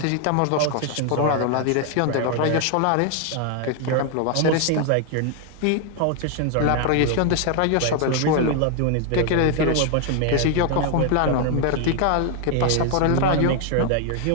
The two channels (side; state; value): both; different; correlation 0.00